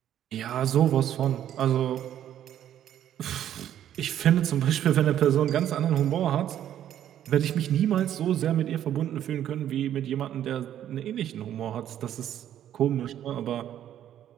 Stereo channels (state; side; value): quieter; left; 10.9 dB